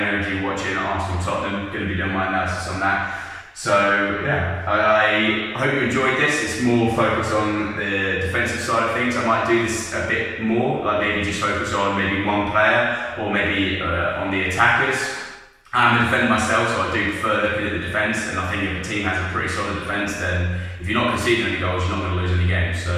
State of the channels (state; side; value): identical; both; correlation 1.00